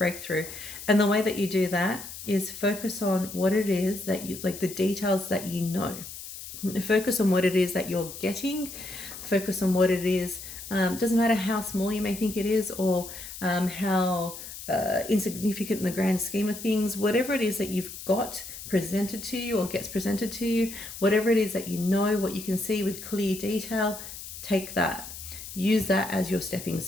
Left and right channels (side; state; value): left; noise; hiss, 11 dB below the sound